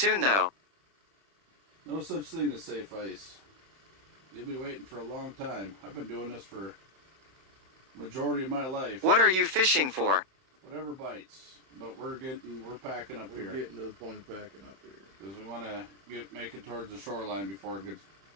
though. No such thing as safe ice. You'll be waiting for a long time. I've been doing this for majority of my life. What are you fishing for? Whatever bites. But we're packing up here. We're getting to the point of packing up here. Because we want to make it towards the shoreline before it gets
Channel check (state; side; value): late; left; 31 ms